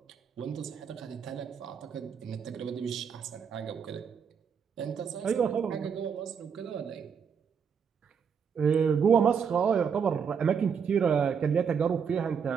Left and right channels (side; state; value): left; quieter; 6.7 dB